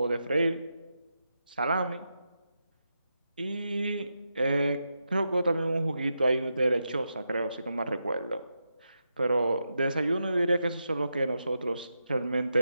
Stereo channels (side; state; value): both; inverted; correlation -0.86